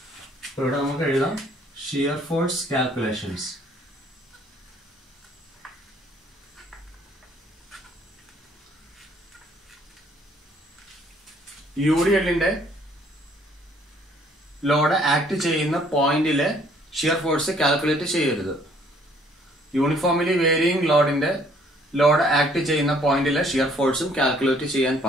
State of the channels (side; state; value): both; normal; correlation 0.62